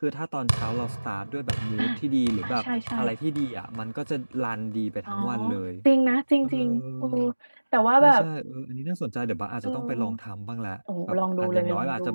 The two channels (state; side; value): inverted; both; correlation -1.00